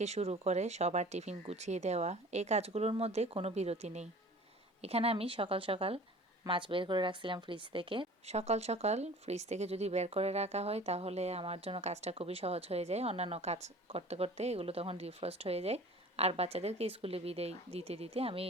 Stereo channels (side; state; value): both; normal; correlation 0.44